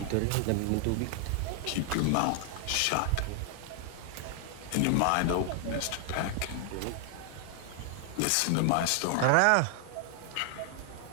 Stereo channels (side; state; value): both; different; correlation 0.00